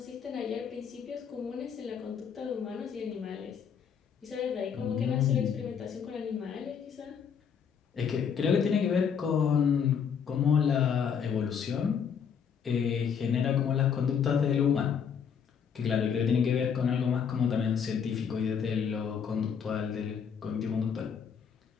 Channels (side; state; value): right; quieter; 7.2 dB